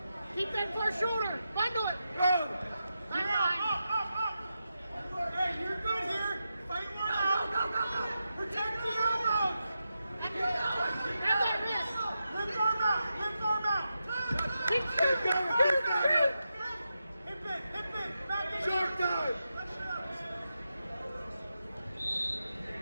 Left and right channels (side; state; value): both; inverted; correlation -0.88